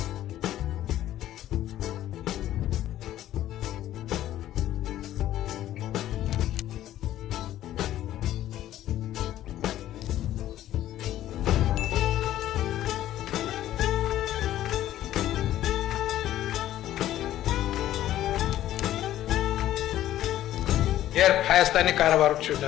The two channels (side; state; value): right; quieter; 13.1 dB